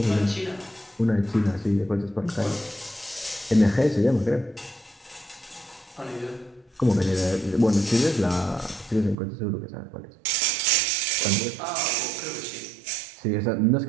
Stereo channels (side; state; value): left; drops out; at 9.2 s